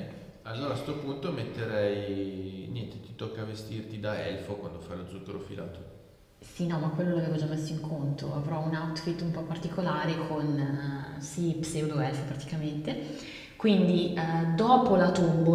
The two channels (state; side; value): identical; both; correlation 1.00